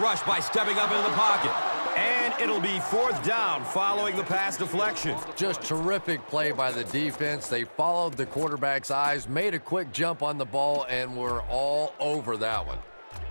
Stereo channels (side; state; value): both; inverted; correlation -1.00